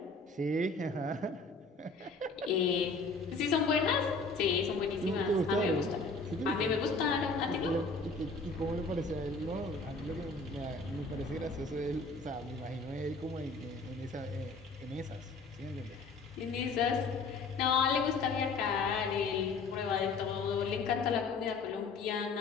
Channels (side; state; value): right; quieter; 3.7 dB